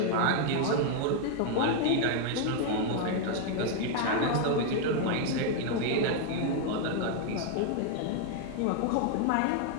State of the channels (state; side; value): different; both; correlation 0.00